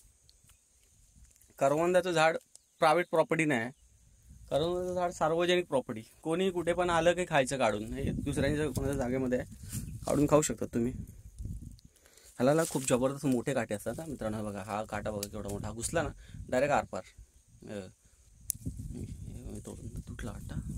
करवंदाचं झाड प्रायव्हेट प्रॉपर्टी नाही, करवंदाचं झाड सार्वजनिक प्रॉपर्टी. कोणी कुठे पण आलं की खायचं काढून, हे दुसऱ्यांच्या कोणाच्या जागेमध्ये आहे, काढून खाऊ शकतात तुम्ही. ह्याला खूप जबरदस्त मोठे काटे असतात ना मित्रांनो. बघा हा काटा बघा केवढा मोठा, हा घुसला ना डायरेक्ट आरपार. तोडून तुटला वाटतं.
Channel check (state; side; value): identical; both; correlation 1.00